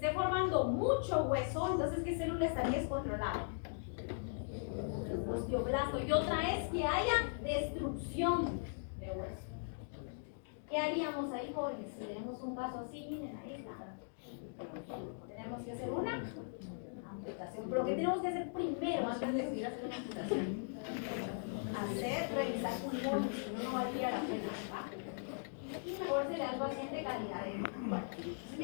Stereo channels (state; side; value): silent; right; digital silence